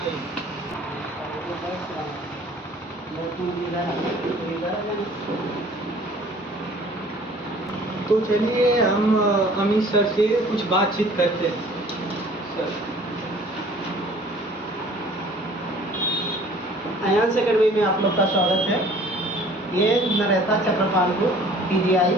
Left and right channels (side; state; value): both; normal; correlation 0.51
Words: तो चलिए हम अमित सर से कुछ बातचीत करते हैं। सर, अयांश एकेडमी में आप लोग का स्वागत है। ये नरेथा चक्रपालपुर पीजीआई